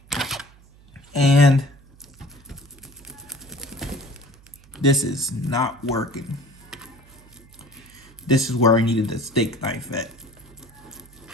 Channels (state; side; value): noise; right; hum, 25 dB below the sound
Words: And this is not working. This is where I needed the steak knife at.